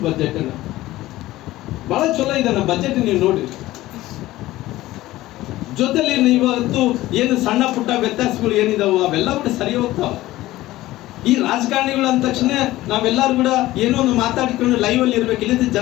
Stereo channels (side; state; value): right; quieter; 16.7 dB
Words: ಬಜೆಟ್ ಅಣ್ಣ, ಬಹಳ ಚಲೋ ಇದೆ ಅಣ್ಣ ಬಜೆಟ್. ನೀವು ನೋಡಿ, ಜೊತೆಲಿ ಇವತ್ತು ಏನು ಸಣ್ಣ ಪುಟ್ಟ ವ್ಯತ್ಯಾಸಗಳು ಏನಿದಾವೋ ಅವೆಲ್ಲ ಕೂಡ ಸರಿ ಹೋಗ್ತಾವ. ಈ ರಾಜಕಾರಣಿಗಳು ಅಂದ ತಕ್ಷಣ ನಾವೆಲ್ಲರೂ ಕೂಡ ಏನೋ ಒಂದು ಮಾತಾಡಿಕೊಂಡು ಲೈವ್ ಅಲ್ಲಿ ಇರ್ಬೇಕು, ಇಲ್ಲದ